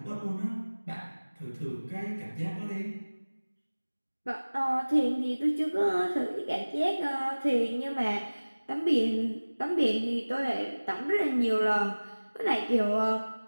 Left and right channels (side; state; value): both; inverted; correlation -1.00